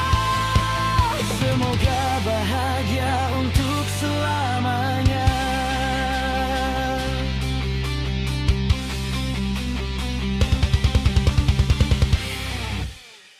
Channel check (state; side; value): identical; both; correlation 1.00